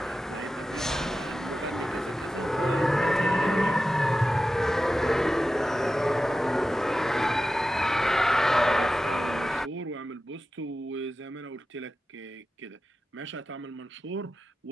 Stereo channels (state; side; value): normal; both; correlation 0.93